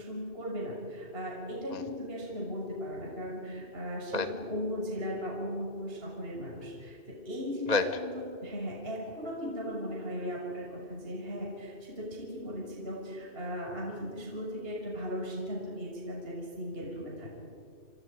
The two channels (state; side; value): late; left; 2.6 ms